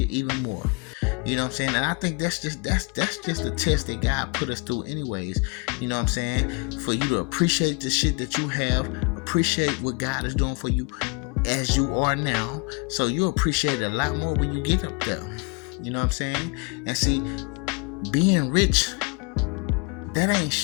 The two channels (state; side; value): quieter; right; 32.6 dB